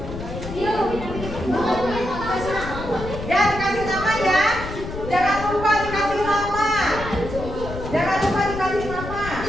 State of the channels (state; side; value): noise; left; rumble, 9 dB below the sound